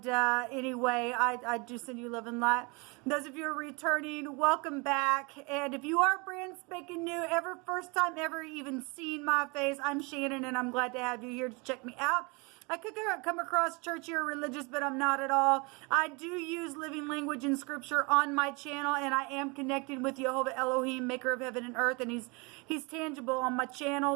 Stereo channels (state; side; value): quieter; left; 29.1 dB